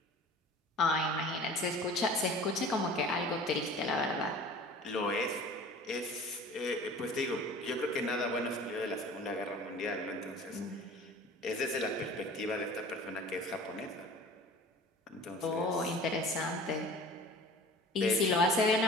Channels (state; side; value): normal; both; correlation 0.43